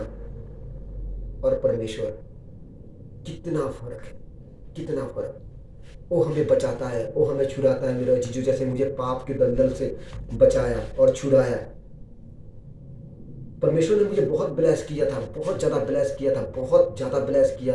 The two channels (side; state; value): both; identical; correlation 1.00